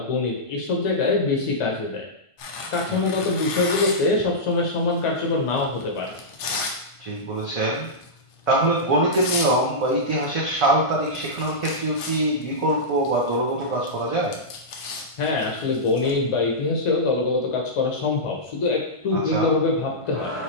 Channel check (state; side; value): late; right; 1.5 ms